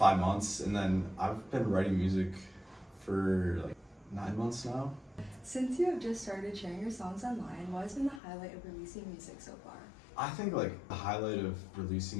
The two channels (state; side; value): drops out; right; at 8.2 s